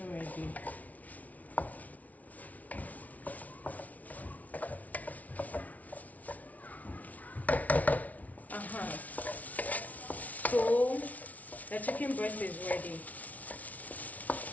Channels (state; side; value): late; right; 0.072 ms